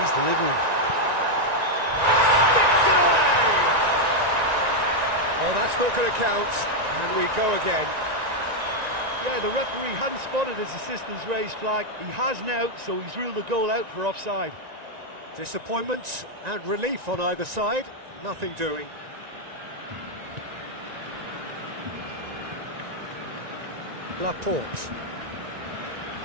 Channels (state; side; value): late; left; 1.9 ms